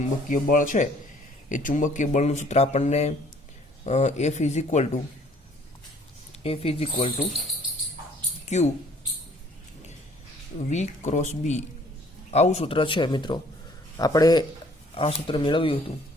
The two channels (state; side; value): normal; both; correlation 0.58